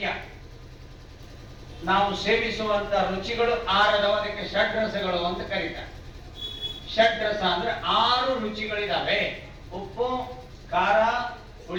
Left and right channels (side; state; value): both; identical; correlation 1.00